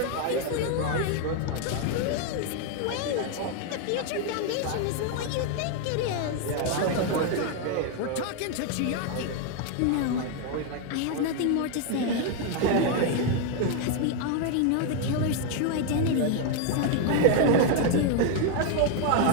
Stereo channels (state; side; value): different; both; correlation 0.01